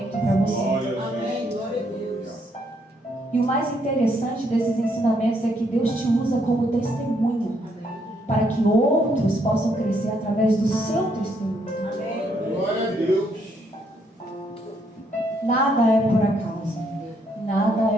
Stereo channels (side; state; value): both; normal; correlation 0.72